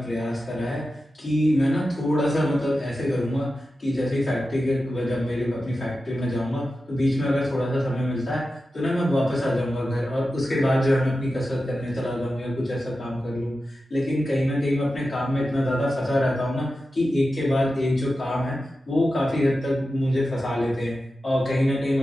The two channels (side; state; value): both; normal; correlation 0.92